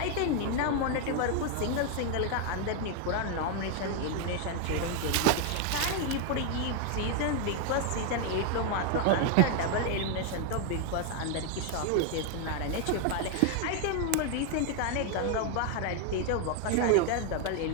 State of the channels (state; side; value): different; both; correlation 0.00